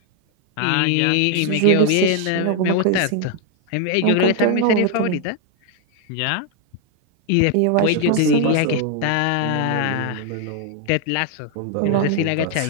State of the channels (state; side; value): different; both; correlation 0.00